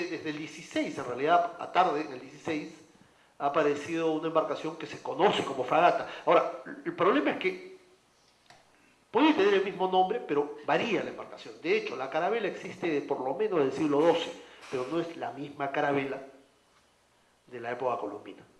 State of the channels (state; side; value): identical; both; correlation 1.00